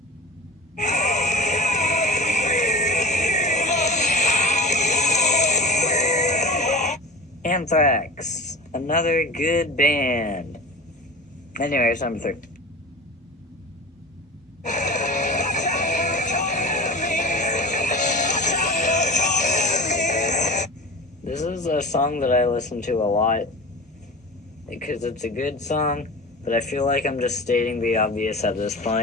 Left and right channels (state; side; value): normal; both; correlation 0.33